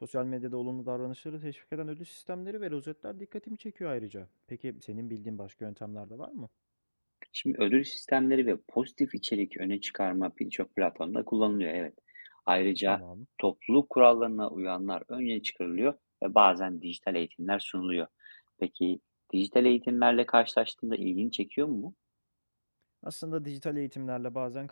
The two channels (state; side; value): inverted; both; correlation -1.00